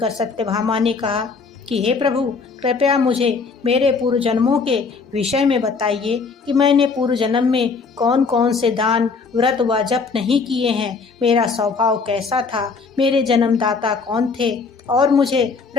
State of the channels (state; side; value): quieter; right; 4.8 dB